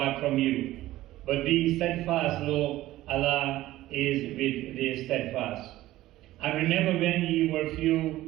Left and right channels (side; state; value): left; quieter; 15.8 dB